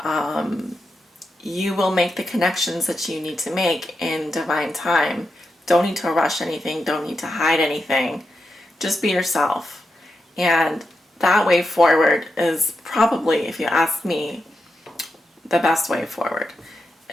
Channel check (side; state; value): both; normal; correlation 0.87